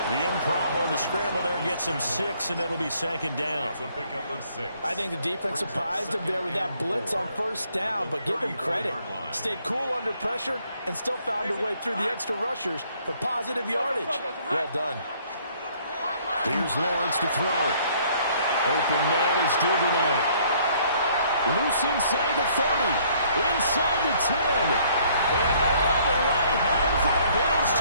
The improv on the scramble there gets him 6, and it'll be second down. It's a pickup of 6. I think the defense surprised him there with that blitz on first down, but give him credit. Stayed cool under pressure and still found a way through the extra rushers for positive yardage. Well done. Here's Lawrence to throw. Open man is Duvernay. Loose inside the 30. Inside the 10. And all the way home for a Bills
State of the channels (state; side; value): inverted; both; correlation -0.63